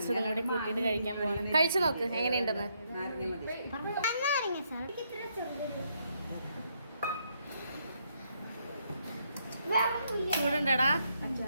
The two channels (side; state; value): both; inverted; correlation -0.75